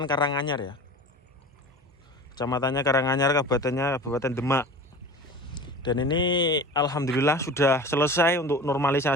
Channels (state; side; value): normal; both; correlation 0.36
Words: Karanganyar ya, kecamatannya Karanganyar, Kabupaten Demak. Dan ini alhamdulillah sudah selesai untuk